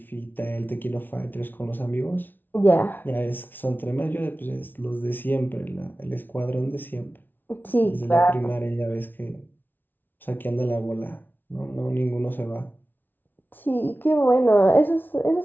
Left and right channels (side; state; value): right; late; 0.091 ms